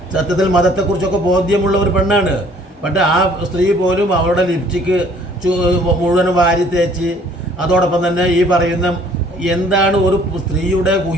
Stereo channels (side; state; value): both; normal; correlation 0.57